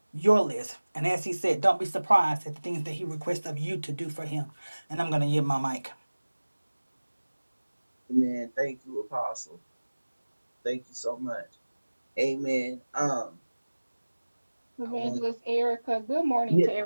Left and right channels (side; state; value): both; inverted; correlation -1.00